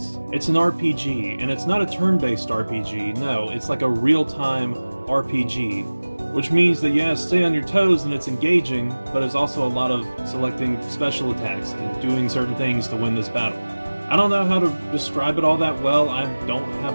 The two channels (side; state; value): both; inverted; correlation -1.00